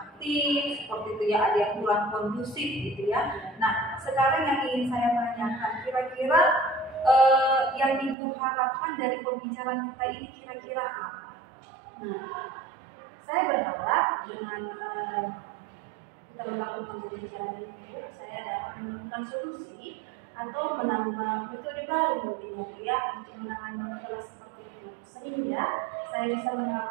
seperti itu ya, ada yang kurang kondusif gitu ya. Nah, sekarang yang ingin saya tanyakan, kira-kira yang Ibu harapkan dari pembicaraan kita ini kira-kira apa? Nah, saya berharap dengan kita melakukan pembicaraan ini, saya dapat menemukan solusi atau menambah metode baru mungkin ya untuk menangani kelas seperti itu, sehingga saya bisa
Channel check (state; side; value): drops out; left; at 8.2 s